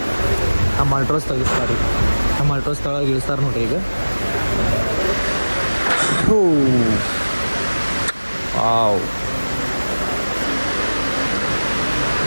ನಮ್ಮ ಅಲ್ಟ್ರೋಸ್ ತೆಗಿಸ್ತಾರೆ. ನಮ್ಮ ಅಲ್ಟ್ರೋಸ್ ತಳಗೆ ಇಳಿಸ್ತಾರೆ ನೋಡ್ರಿ ಈಗ. ವಾವ್.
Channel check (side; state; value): both; inverted; correlation -1.00